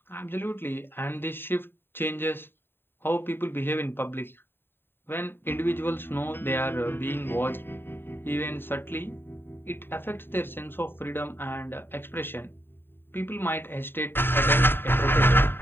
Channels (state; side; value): late; right; 0.10 ms